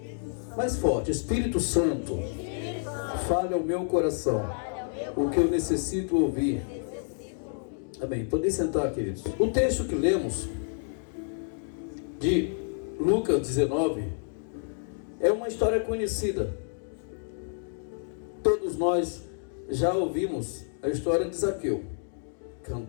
mais forte, Espírito Santo, fale ao meu coração o que eu necessito ouvir. Amém. Podem sentar, queridos. O texto que lemos de Lucas 19 é uma história conhecida. Todos nós já ouvimos a história de Zaqueu,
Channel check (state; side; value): silent; right; digital silence